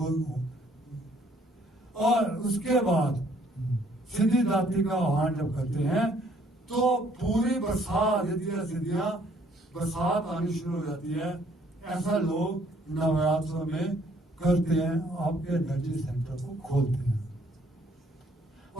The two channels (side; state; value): both; normal; correlation 0.63